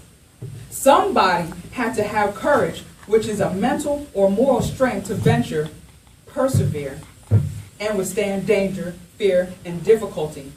Somebody had to have courage, which is a mental or moral strength to venture, persevere, and withstand danger, fear, and difficulty,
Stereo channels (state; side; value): identical; both; correlation 1.00